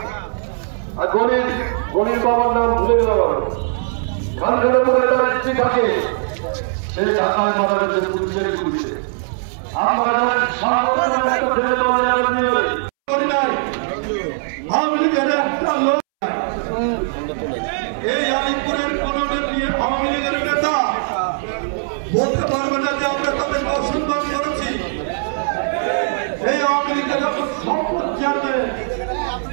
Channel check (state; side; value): silent; left; 66 dB below the other